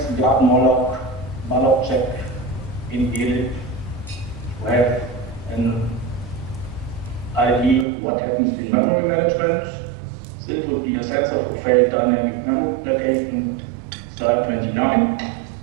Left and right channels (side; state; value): left; drops out; at 7.9 s